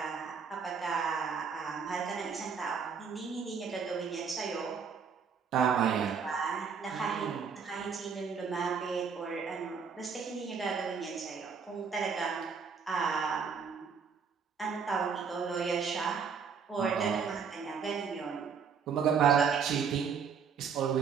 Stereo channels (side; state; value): left; quieter; 6.2 dB